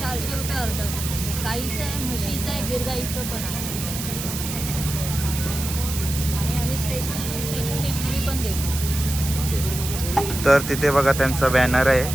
400 रुपये अर्धा. गाईचं आहे, म्हशीचं आहे, गिरगाईचं पण आहे. आणि आम्ही स्टेशन डिलिव्हरी पण देतो. तर तिथे बघा त्यांचा बॅनर आहे,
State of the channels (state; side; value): noise; right; hiss, 6 dB below the sound